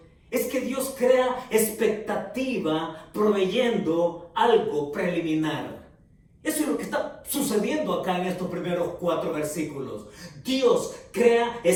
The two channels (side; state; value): both; identical; correlation 1.00